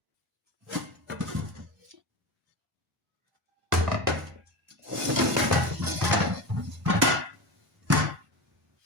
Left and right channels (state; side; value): normal; both; correlation 0.24